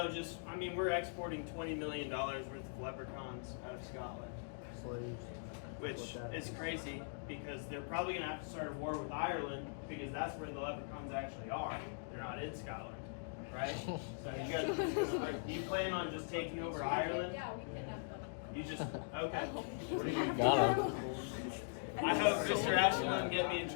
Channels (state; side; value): silent; right; digital silence